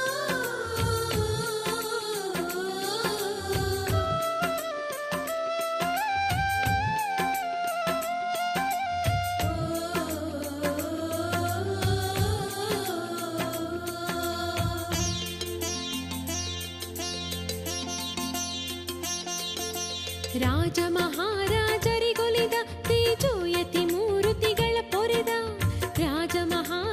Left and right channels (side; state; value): both; identical; correlation 1.00